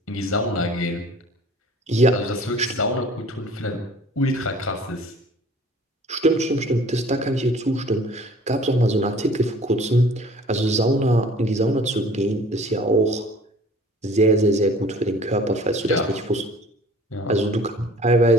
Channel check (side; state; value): both; normal; correlation 0.49